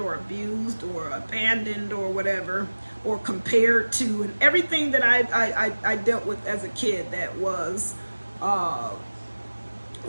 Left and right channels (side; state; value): both; inverted; correlation -1.00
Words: abused, or abandoned, or whatever, or compared to, and everything that I dealt with as a kid that was